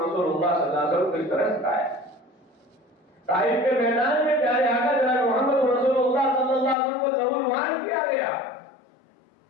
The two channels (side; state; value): right; drops out; at 6.8 s